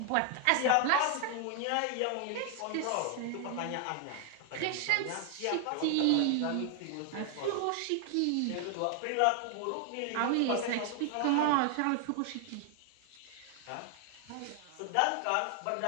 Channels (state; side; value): different; both; correlation 0.00